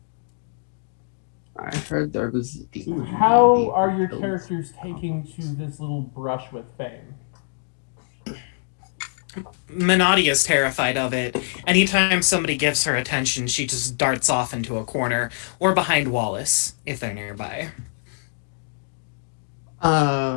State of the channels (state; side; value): silent; right; digital silence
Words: I heard there was a demon. How are your characters taking to this little brush with fame? Minotti is terrified of it. Anytime somebody gives her attention, she just darts off into a corner or behind Wallace if they're nearby.